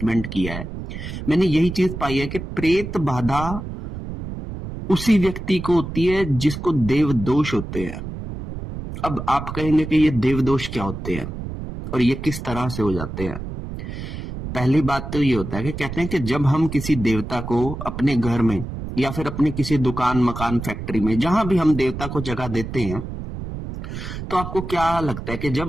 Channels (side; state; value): right; noise; rumble, 8 dB below the sound